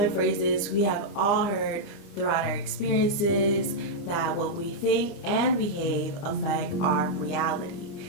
phrases we have all heard throughout our experiences that what we think and behave affect our reality.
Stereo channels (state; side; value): late; right; 29 ms